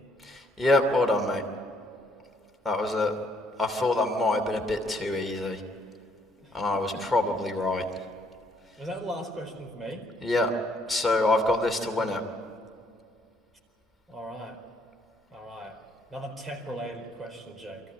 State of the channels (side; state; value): both; normal; correlation 0.68